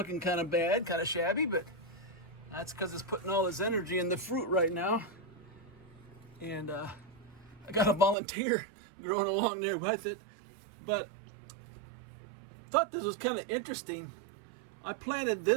kind of bad, kind of shabby, but that's because it's putting all this energy in the fruit right now. And I got a volunteer growing along there with it. But thought this was kind of interesting. I planted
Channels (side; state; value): left; drops out; at 8.2 s